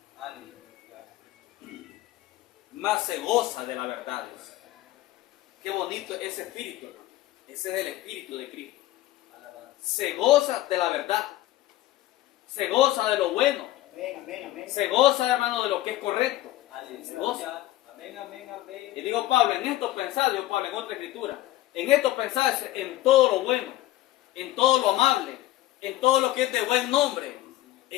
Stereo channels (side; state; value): right; quieter; 15.7 dB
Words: Más se goza de la verdad. Qué bonito ese espíritu, hermano. Ese es el espíritu de Cristo. Se goza de la verdad. Se goza de lo bueno. Amén, amén, amén. Se goza, hermano, de lo que es correcto. Se goza. Amén, amén, amén. Y digo Pablo, en esto pensad, digo Pablo en otra escritura, en esto pensad en todo lo bueno, en todo lo amable, en todo lo que es de buen nombre.